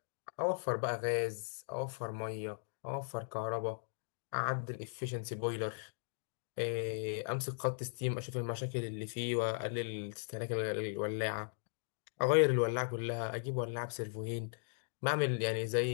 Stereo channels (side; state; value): right; silent; digital silence